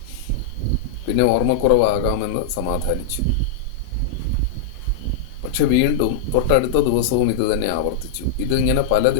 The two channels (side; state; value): right; quieter; 5.2 dB